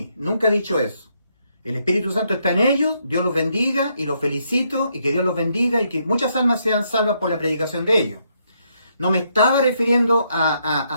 Nunca he dicho eso. El Espíritu Santo está en ellos, Dios los bendiga y los felicito, y que Dios los bendiga y que muchas almas sean salvas por la predicación de ellos. No me estaba refiriendo a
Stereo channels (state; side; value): inverted; both; correlation -0.75